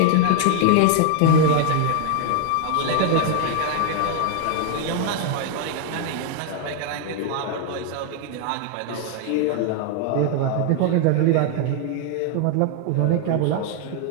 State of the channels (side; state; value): both; different; correlation 0.00